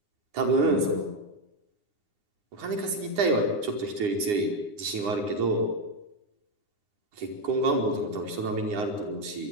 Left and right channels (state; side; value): late; left; 9.7 ms